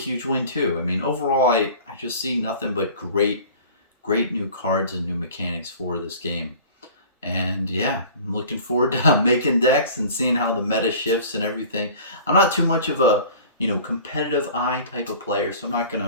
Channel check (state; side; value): inverted; both; correlation -0.43